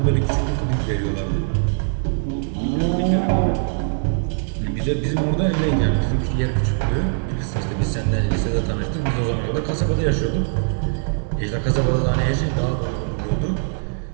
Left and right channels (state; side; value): silent; left; digital silence